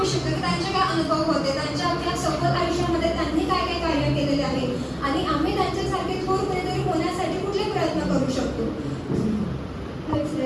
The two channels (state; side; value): identical; both; correlation 1.00